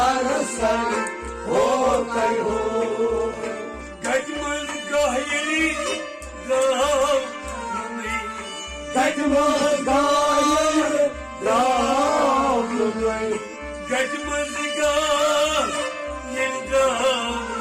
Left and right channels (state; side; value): identical; both; correlation 1.00